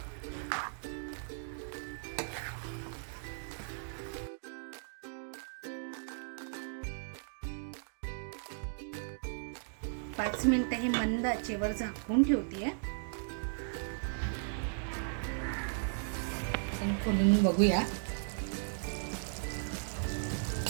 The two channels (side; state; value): left; silent; digital silence